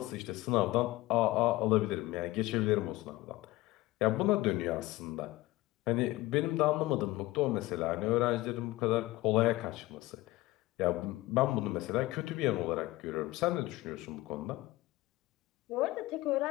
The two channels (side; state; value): right; quieter; 18.8 dB